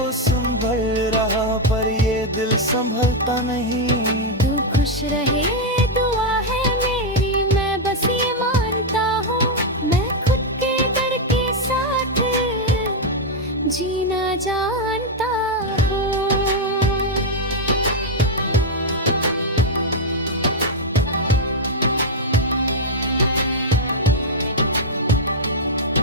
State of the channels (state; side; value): normal; both; correlation 0.00